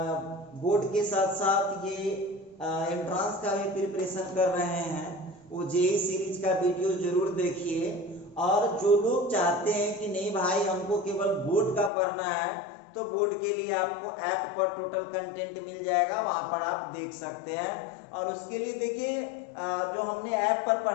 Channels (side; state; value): right; drops out; at 11.9 s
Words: बोर्ड के साथ साथ ये एंट्रांस का भी प्रिपरेशन कर रहे हैं वो जेईई सीरीज का वीडियो जरूर देखिए। और जो लोग चाहते हैं कि नहीं भाई हमको केवल बोर्ड का पढ़ना है, तो बोर्ड के लिए आपको ऐप पर टोटल कंटेंट मिल जाएगा, वहां पर आप देख सकते हैं। और उसके लिए देखिए जो हमने ऐप पर